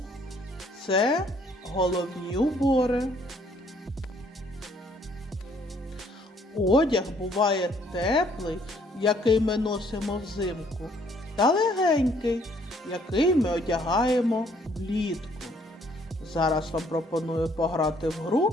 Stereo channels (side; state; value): both; normal; correlation 0.64